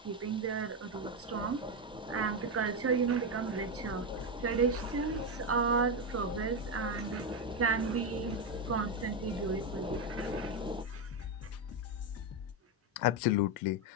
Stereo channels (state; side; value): normal; both; correlation 0.08